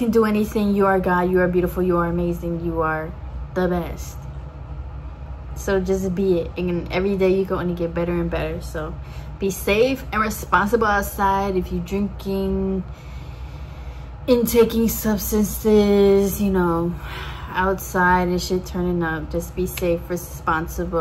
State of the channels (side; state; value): both; identical; correlation 1.00